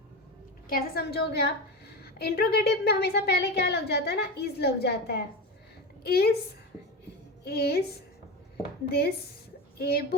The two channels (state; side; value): normal; both; correlation 0.22